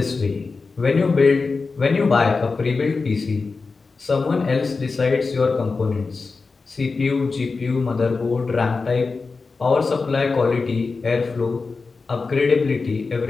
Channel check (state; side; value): quieter; right; 4.3 dB